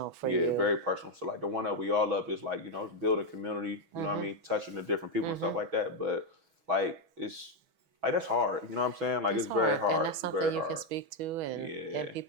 for you. Yeah, very personal. So like the one that we all love is like, you know, it's building community, you know what I mean, touching the different people and stuff like that. But like it's like that's hard. You know what I'm saying? Like it's very hard. And that's something you can speak to, and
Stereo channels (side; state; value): left; late; 6.2 ms